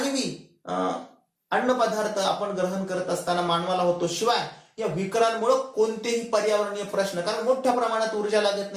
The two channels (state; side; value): identical; both; correlation 1.00